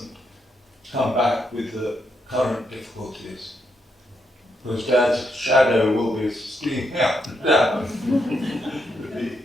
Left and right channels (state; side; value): normal; both; correlation 0.79